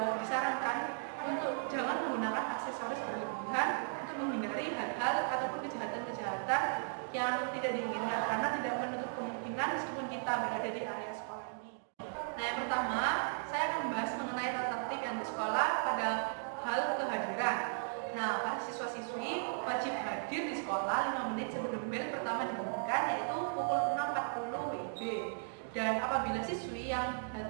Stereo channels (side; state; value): left; silent; digital silence